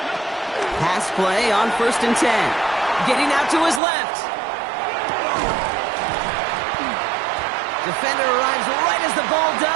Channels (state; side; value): drops out; left; at 3.8 s